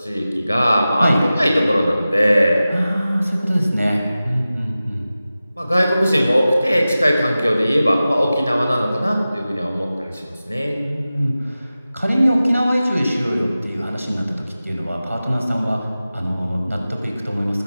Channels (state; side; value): inverted; both; correlation -0.95